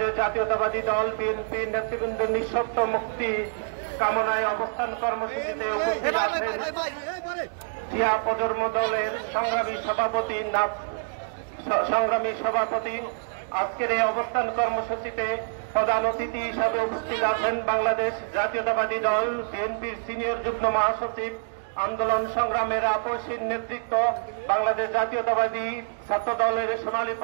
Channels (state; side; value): silent; left; digital silence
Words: জাতীয়তাবাদী দল বিএনপি নেতৃবৃন্দের নিঃশর্ত মুক্তি কামনায় অবস্থান কর্মসূচিতে উপস্থিত আছেন জিয়া প্রজন্ম দলের সংগ্রামী সভাপতি। আজকের এই অবস্থান কর্মসূচিতে প্রধান অতিথি হিসাবে উপস্থিত আছেন বাংলাদেশ জাতীয়তাবাদী দল বিএনপির সিনিয়র যুগ্ম মহাসচিব, আন্দোলন সংগ্রামের আপসীর নেতৃত্ব বাংলাদেশ জাতীয়তাবাদী ছাত্র দলের সোনালী